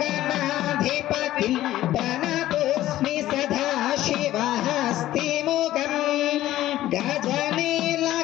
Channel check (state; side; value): quieter; right; 14.4 dB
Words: गणाधिपतिं प्रणतोऽस्मि सदा शिवहस्तिमुखं गजनील